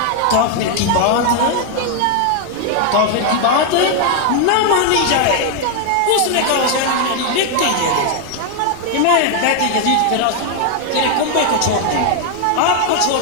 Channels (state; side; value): different; both; correlation 0.00